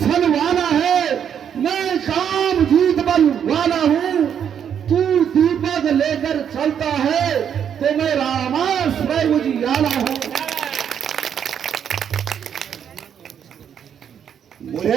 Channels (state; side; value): quieter; left; 8.4 dB